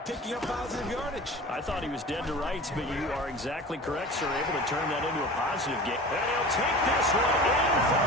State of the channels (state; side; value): normal; both; correlation 0.37